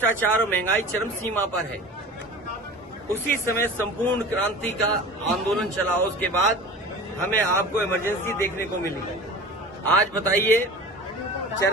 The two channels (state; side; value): normal; both; correlation 0.37